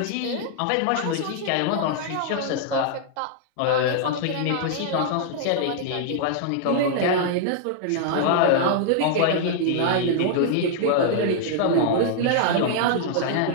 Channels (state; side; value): different; both; correlation -0.01